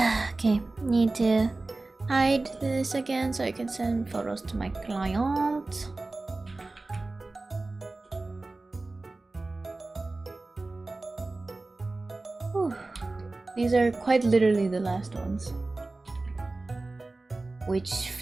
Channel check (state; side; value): quieter; left; 3.2 dB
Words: Okay, need to hide this again so I can send photos to my client. Whew. These are quite literally the last ones, which